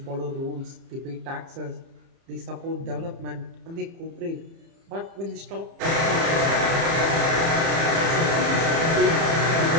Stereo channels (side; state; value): left; late; 30 ms